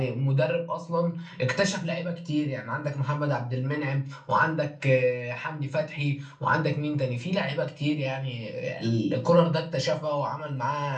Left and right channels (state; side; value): identical; both; correlation 1.00